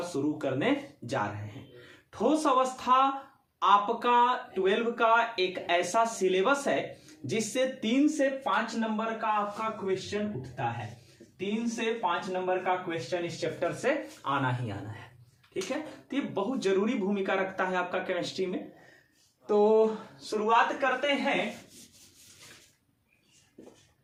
शुरू करने जा रहे हैं। ठोस अवस्था आपका 12 का एक ऐसा सिलेबस है जिससे 3 से 5 नंबर का आपका क्वेश्चन उठता है। 3 से 5 नंबर का क्वेश्चन इस चैप्टर से आना ही आना है। ठीक है, तो ये बहुत जरूरी भूमिका रखता है आपका केमिस्ट्री में। तो शुरुआत करते हैं।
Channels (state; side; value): identical; both; correlation 1.00